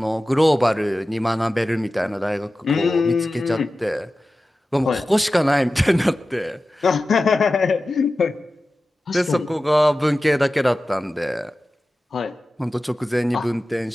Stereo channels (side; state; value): both; normal; correlation 0.95